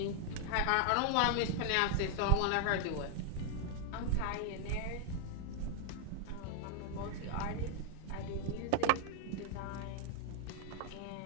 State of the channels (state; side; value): different; both; correlation 0.00